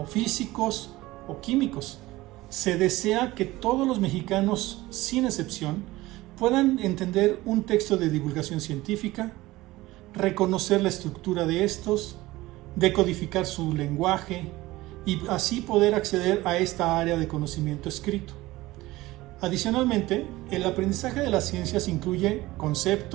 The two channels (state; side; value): quieter; left; 18.6 dB